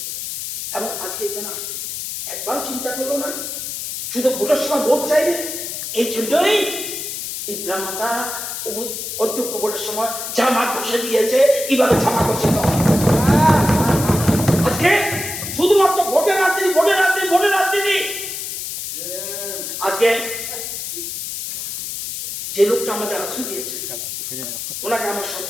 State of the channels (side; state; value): left; noise; hiss, 6 dB below the sound